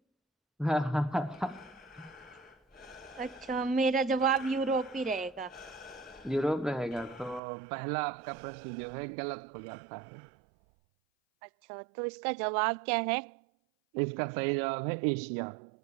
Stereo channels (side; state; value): left; drops out; at 7.4 s